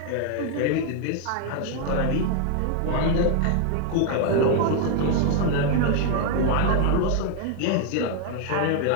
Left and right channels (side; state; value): both; different; correlation 0.00